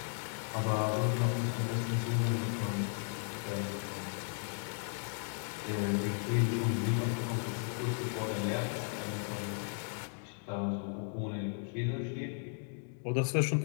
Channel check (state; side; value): silent; right; 54 dB below the other